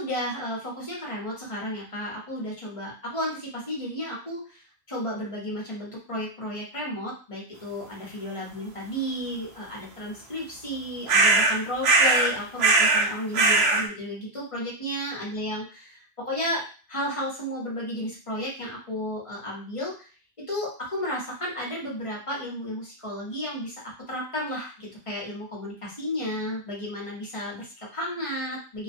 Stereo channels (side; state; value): both; normal; correlation 0.02